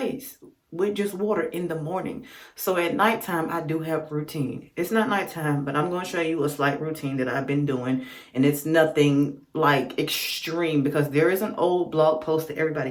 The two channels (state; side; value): identical; both; correlation 1.00